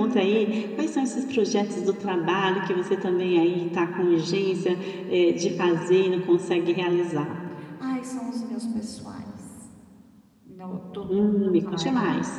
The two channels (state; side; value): identical; both; correlation 1.00